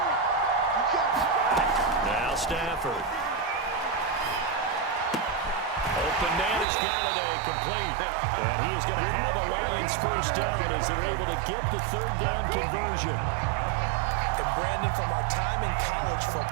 Now Stafford. Open man is Galladay, complete. And he is going to have a Lions first down as they're able to get the 3rd down conversion. And Brandon, from our time in college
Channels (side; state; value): left; drops out; at 6.7 s